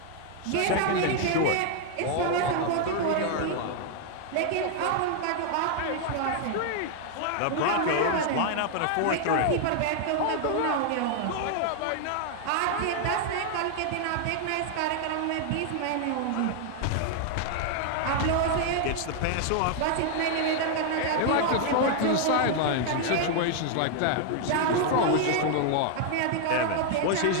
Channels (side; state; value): both; different; correlation 0.00